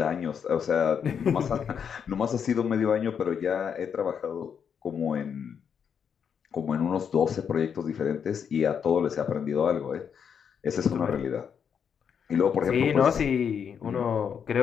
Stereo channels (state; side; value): quieter; right; 7.4 dB